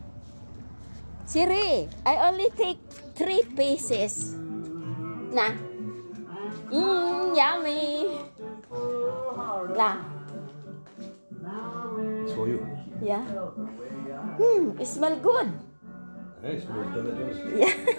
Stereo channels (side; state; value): both; inverted; correlation -1.00